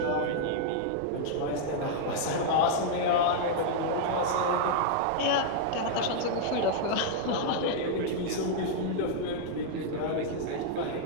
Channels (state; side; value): different; both; correlation -0.01